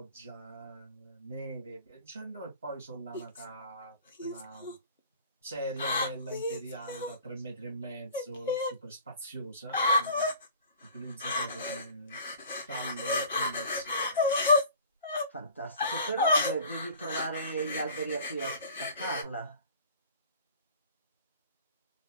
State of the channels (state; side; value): inverted; both; correlation -0.47